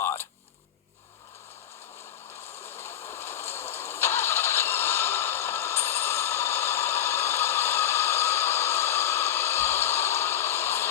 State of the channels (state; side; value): quieter; right; 10.9 dB